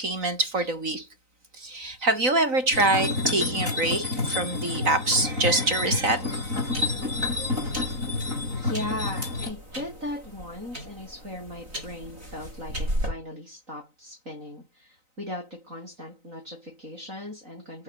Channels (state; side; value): late; left; 3.9 ms